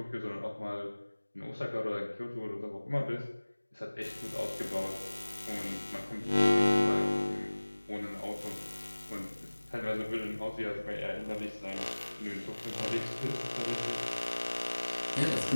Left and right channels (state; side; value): inverted; both; correlation -1.00